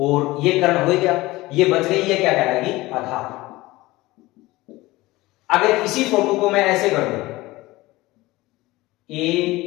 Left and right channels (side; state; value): right; quieter; 19.5 dB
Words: ये कर्ण हो गया, ये बच गई, ये क्या कहलाएगी? आधार। अगर इसी फोटो को मैं ऐसे कर दूं, A